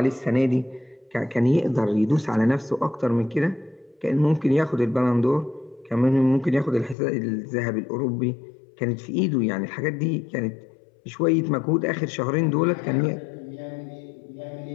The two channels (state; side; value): drops out; right; at 7.0 s